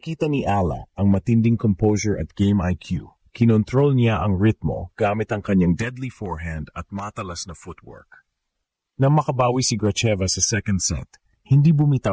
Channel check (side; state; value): both; identical; correlation 1.00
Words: ni Ala ang matinding composure at game IQ. Kinontrol niya ang ritmo gamit ang kanyang deadly forehand at matalas na footwork. Nang makabawi si Gracheva sa second set, hindi